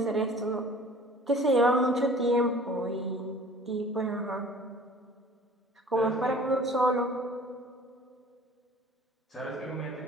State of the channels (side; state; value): both; normal; correlation 0.48